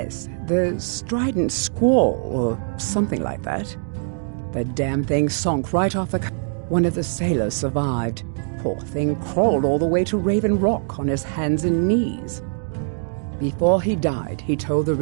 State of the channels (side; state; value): left; silent; digital silence